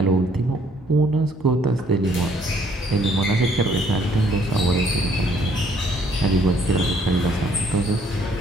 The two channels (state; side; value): normal; both; correlation 0.64